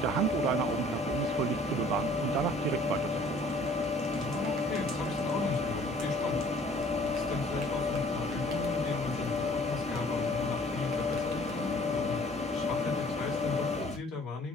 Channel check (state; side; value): normal; both; correlation 0.54